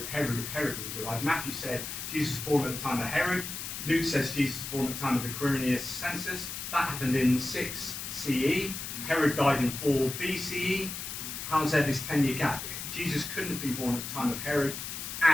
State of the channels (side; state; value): left; noise; hiss, 7 dB below the sound